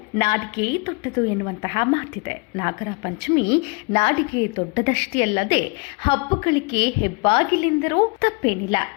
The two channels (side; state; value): right; quieter; 29.7 dB